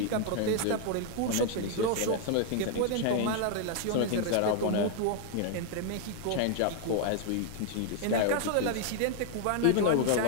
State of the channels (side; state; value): both; different; correlation 0.00